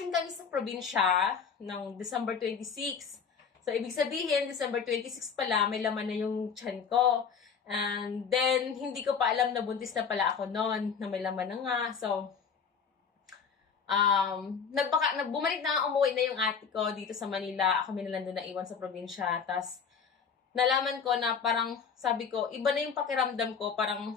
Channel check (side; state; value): right; quieter; 6.4 dB